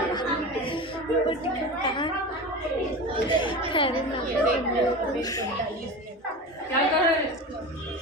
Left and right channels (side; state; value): both; normal; correlation 0.29